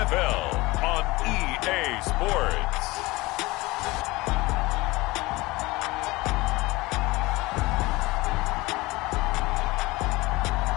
on EA Sports.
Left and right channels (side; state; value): right; quieter; 21.4 dB